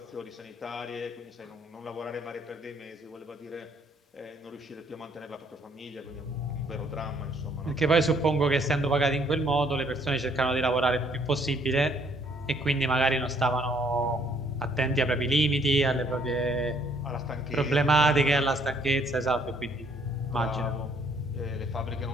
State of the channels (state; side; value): normal; both; correlation 0.65